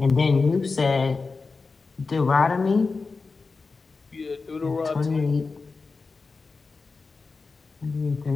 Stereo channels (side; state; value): right; quieter; 4.2 dB